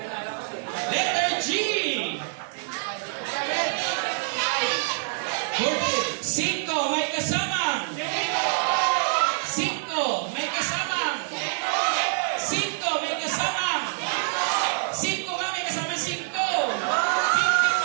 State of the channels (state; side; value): silent; left; 61 dB below the other